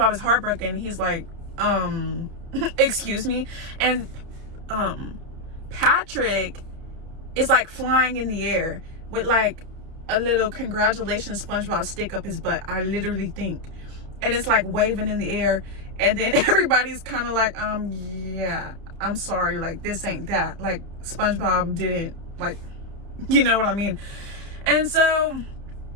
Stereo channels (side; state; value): left; late; 30 ms